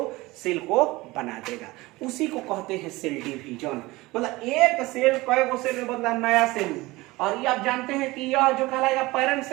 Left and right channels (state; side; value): quieter; left; 20.7 dB